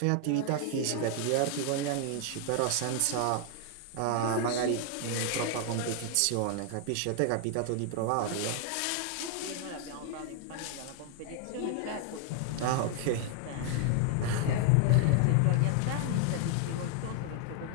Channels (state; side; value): different; both; correlation 0.00